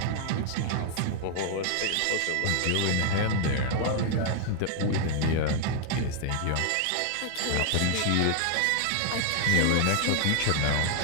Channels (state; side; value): different; both; correlation 0.00